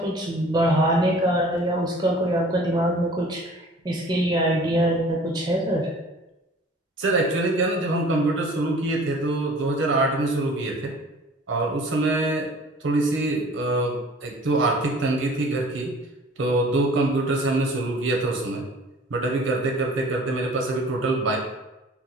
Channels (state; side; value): normal; both; correlation 0.48